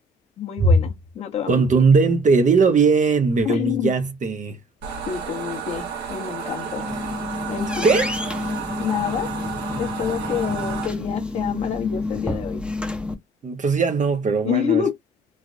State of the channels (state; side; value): normal; both; correlation 0.56